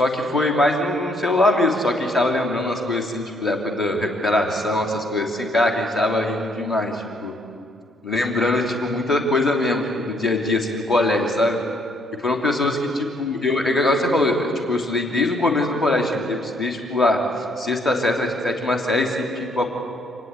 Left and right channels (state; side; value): normal; both; correlation 0.67